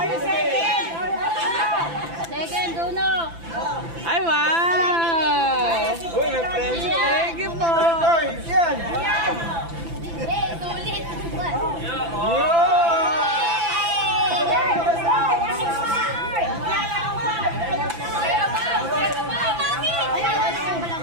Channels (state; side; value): late; left; 5.9 ms